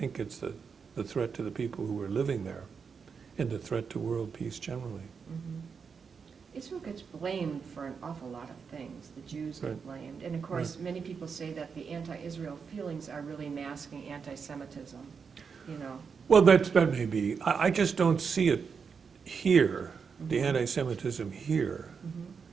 it's the threat to the people who are living there and the threat to world peace generally. Israel gets blamed for an awful lot of things. The Jews get Right. blamed. And of course, many people say that the anti-Israel feelings are really masking anti-Semitism, Well, that may be. I just don't see it here, the anti-Semitism here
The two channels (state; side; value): quieter; left; 5.9 dB